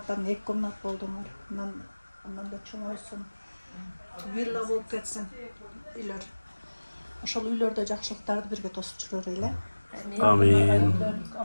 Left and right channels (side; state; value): both; inverted; correlation -1.00